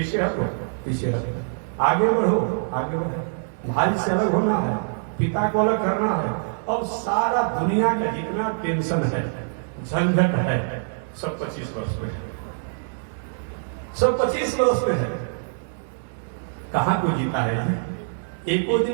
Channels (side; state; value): left; silent; digital silence